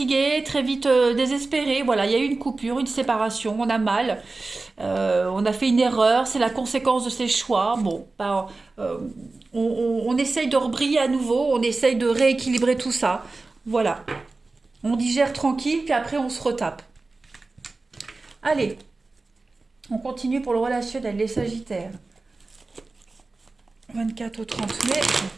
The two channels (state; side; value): quieter; left; 3.5 dB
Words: très vite désespéré. Voilà, il y a eu une coupure, une séparation, on a mal. On a fait une erreur, c'est la conséquence de ses choix. Bon, bah, euh, on essaye de rebriller à nouveau, on essaye de rééquilibrer tout ça. Voilà, on digère tranquille, puis après on se retape. Allez, on continue pour le relationnel, les Sagittaires. 24 au 30 mai.